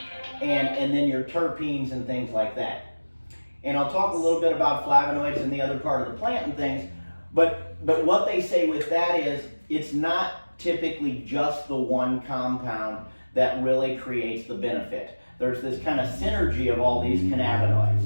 and then your terpenes and things like that. And I'll talk a little bit about flavonoids and the other part of the plant and things, but what they say with that is it's not typically just the one compound that really creates the benefit. There's this kind of synergy of all these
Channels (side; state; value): both; inverted; correlation -1.00